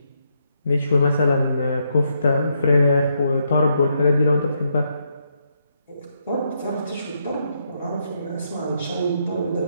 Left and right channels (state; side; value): inverted; both; correlation -0.78